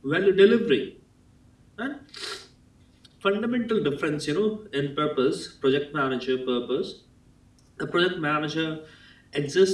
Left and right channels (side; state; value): both; identical; correlation 1.00